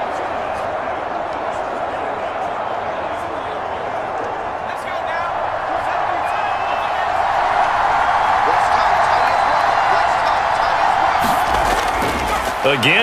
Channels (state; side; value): identical; both; correlation 1.00